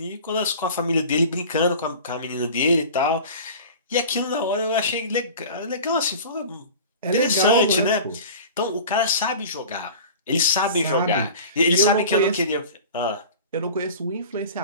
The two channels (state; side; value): inverted; both; correlation -0.38